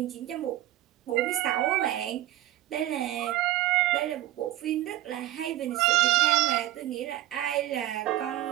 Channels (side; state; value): left; quieter; 14.7 dB